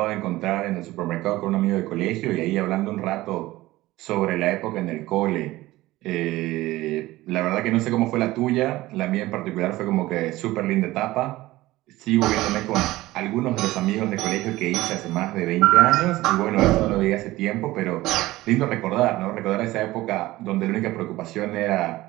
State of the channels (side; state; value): left; quieter; 17.8 dB